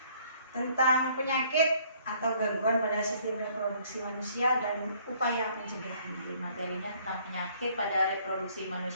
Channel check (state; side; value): inverted; both; correlation -0.61